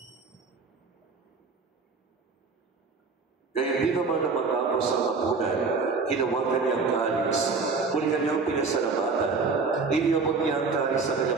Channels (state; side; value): quieter; left; 4.5 dB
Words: Kaya di naman na matapos ang hapunan, hinawakan niya ang kalis, muli kanyang pinasalamatan, iniyabot niya ang kalis sa